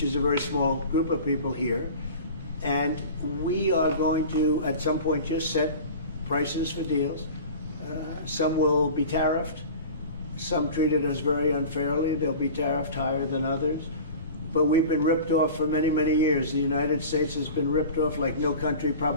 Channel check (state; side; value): inverted; both; correlation -0.37